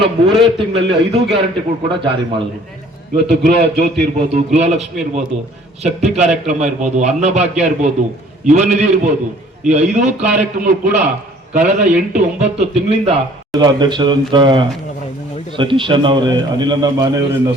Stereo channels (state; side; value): normal; both; correlation 0.55